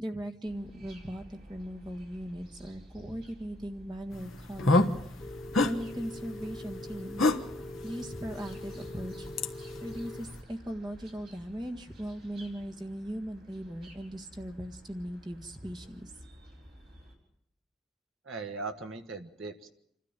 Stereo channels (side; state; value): both; normal; correlation 0.67